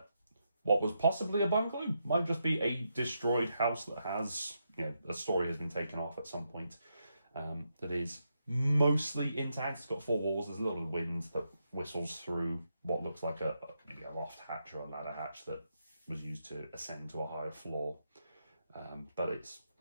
what was possibly a bungalow. Might just be a destroyed house that has, a story has been taken off at some point. That is mostly intact. It's got 4 walls. There's a little wind that whistles through what looks like maybe a loft hatch or a ladder hatch that was used to ascend to a higher floor. But it's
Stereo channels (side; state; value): both; inverted; correlation -0.83